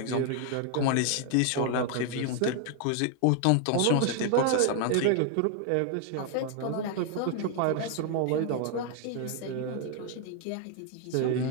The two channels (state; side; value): different; both; correlation 0.00